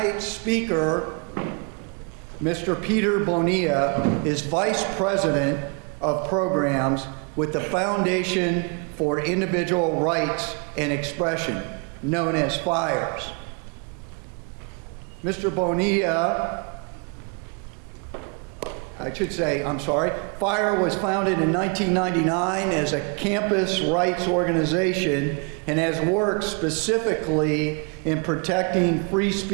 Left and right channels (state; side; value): quieter; left; 35.9 dB